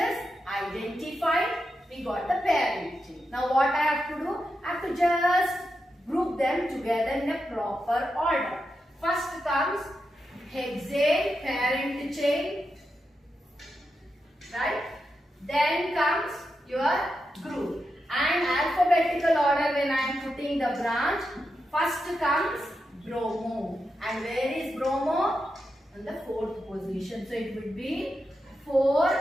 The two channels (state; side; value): normal; both; correlation 0.87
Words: identified. We got the parent chain. Now what I have to do? I have to just group them together in a proper order. First comes hexane parent chain. Right? Then comes your group. And alphabetical order when I am putting the branch. First comes bromo. And where is bromo? On the fourth position. So it would be 4